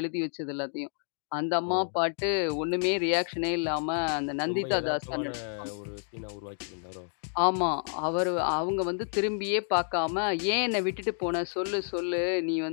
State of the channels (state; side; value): silent; right; 58 dB below the other